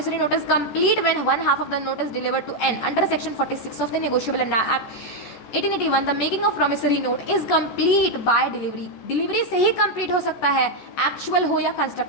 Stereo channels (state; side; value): late; right; 14 ms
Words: note is complete when one half of the note is delivered to N. Under section 46 of the Negotiable Act 1881, the making of promissory note is complete by delivery. Delivery से ही complete हो सकता है, actual हो या